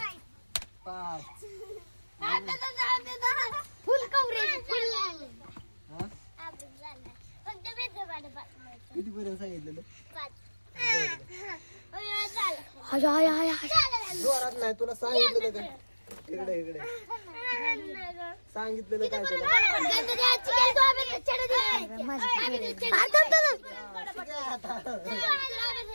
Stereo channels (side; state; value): both; inverted; correlation -1.00